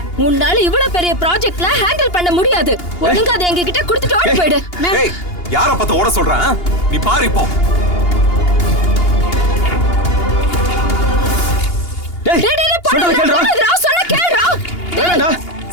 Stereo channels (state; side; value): late; right; 2.8 ms